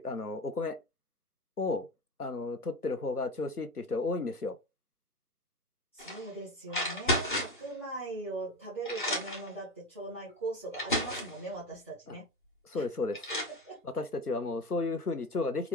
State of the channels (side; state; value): both; normal; correlation 0.25